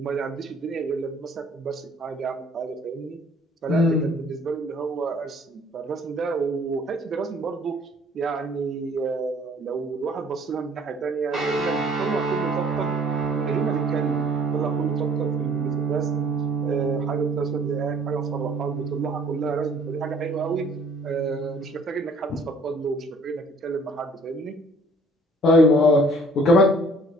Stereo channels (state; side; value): normal; both; correlation 0.56